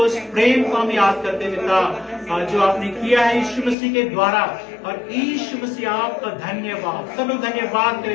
प्रेम को हम याद करते पिता, जो आपने किया है यीशु मसीह के द्वारा। और यीशु मसीह आपका धन्यवाद, सब लोग धन्यवाद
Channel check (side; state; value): right; drops out; at 3.8 s